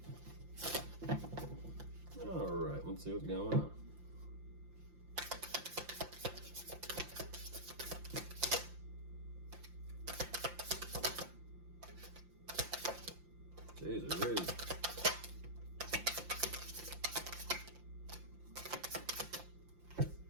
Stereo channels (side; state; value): left; late; 5.8 ms